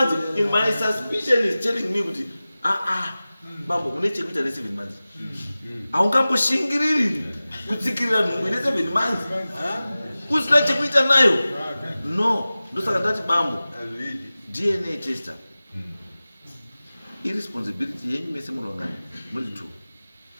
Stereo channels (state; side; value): inverted; both; correlation -0.97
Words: in my suspicion is telling me kuti bambo une chekuita ne 7 months haungamboshingiriri kutsikirira nhumbu ine 7 months usina chekuita nayo no ndosaka ndati bambo DNA tester irresponsibility yenyu mese munongani muri 2